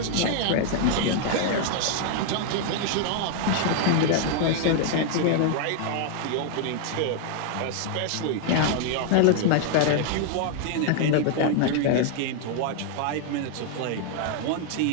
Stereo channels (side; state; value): both; different; correlation 0.00